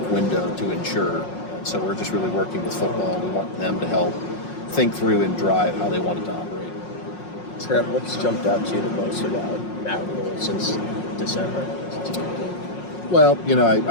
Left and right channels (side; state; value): right; late; 5.5 ms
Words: window to ensure. And so we're just really working with football. We want them to help think through and drive how they want it to operate. Trev, what's jumped out to you the most about Matt Rhule since December? Well,